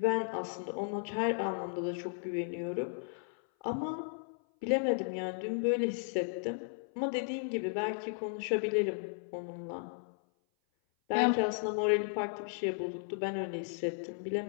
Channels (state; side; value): silent; right; 55 dB below the other